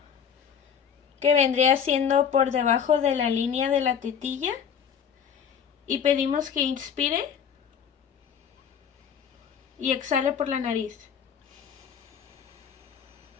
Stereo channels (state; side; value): quieter; right; 7.6 dB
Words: que vendría siendo por debajo de la línea de la tetilla, y pedimos que inspire y exhale por la nariz.